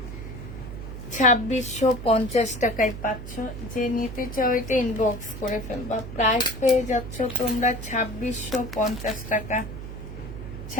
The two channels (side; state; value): right; noise; hum, 9 dB below the sound